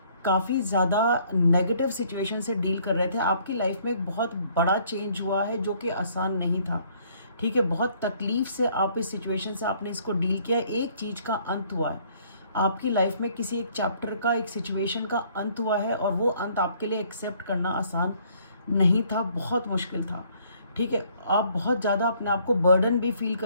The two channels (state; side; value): inverted; both; correlation -0.62